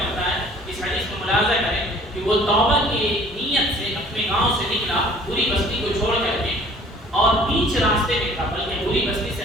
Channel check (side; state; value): both; normal; correlation 0.52